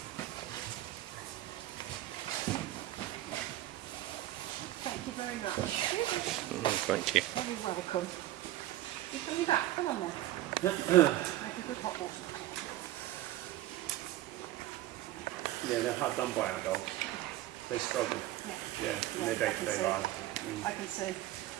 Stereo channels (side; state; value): left; quieter; 15.0 dB